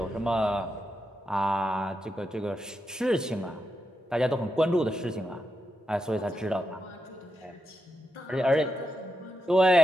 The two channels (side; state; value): both; normal; correlation 0.86